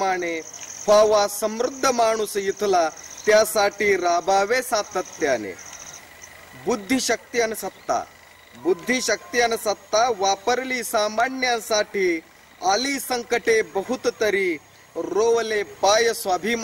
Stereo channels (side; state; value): both; identical; correlation 1.00